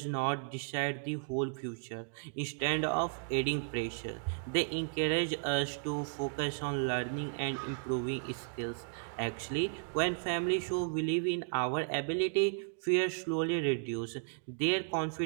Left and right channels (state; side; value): silent; left; digital silence